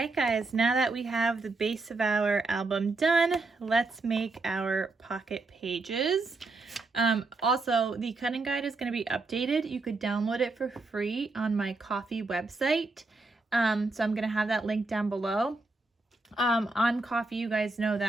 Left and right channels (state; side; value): quieter; left; 3.4 dB